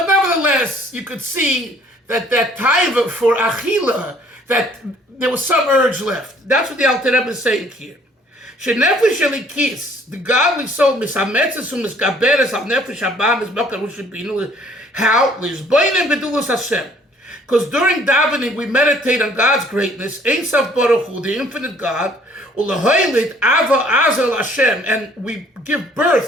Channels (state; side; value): normal; both; correlation 0.58